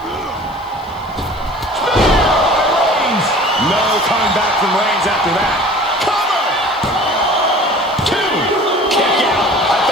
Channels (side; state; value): left; noise; hiss, 30 dB below the sound